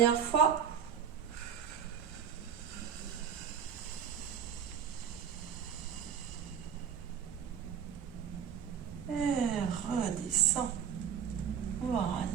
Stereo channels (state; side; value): quieter; left; 8.0 dB